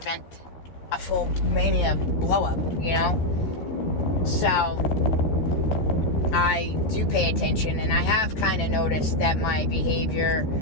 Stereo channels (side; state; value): right; late; 14 ms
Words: a full mania blow up, So I do pay attention, and I have kind of noticed that my behavior